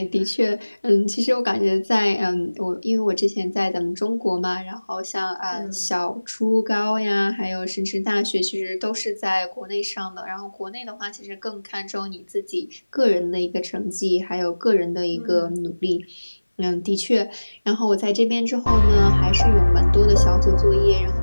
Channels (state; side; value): inverted; both; correlation -1.00